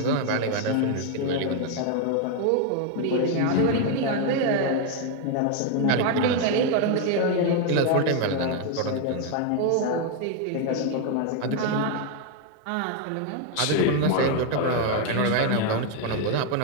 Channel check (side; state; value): both; different; correlation 0.01